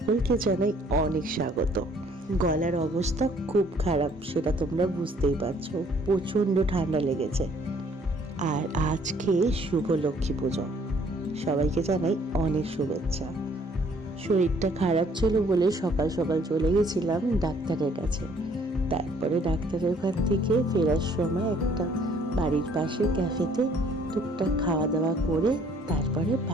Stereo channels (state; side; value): normal; both; correlation 0.61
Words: জানাই অনেক স্বাগত। গলার অবস্থা খুব খারাপ, সেটা তোমরা বুঝতেই পারছো। প্রচণ্ড ঠান্ডা লেগেছে। আর আজকে শুভ লক্ষ্মী পুজো, সবাইকে জানাই অনেক শুভেচ্ছা। শরীরটা খারাপ ছিল বলে সকাল সকাল চলে গেছিলাম ডাক্তারের কাছে। তারপরে ডাক্তারের ওখান থেকে ফেরার সময় একটা বাড়ির পাশে ক্যাফেতে টুকটাক খাওয়া দাওয়া করে তারপরে